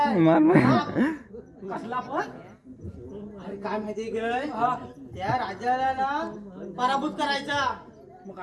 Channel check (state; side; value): identical; both; correlation 1.00